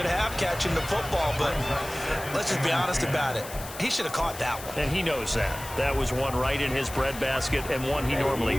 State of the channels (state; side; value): noise; left; hiss, 13 dB below the sound